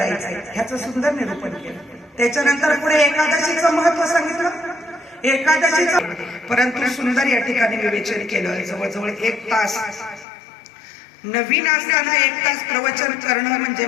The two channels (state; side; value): drops out; right; at 10.2 s